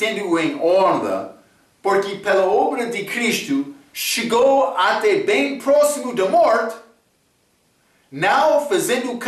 em honra, porque pela obra de Cristo chegou até bem próximo da morte, não fazendo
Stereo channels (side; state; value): both; identical; correlation 1.00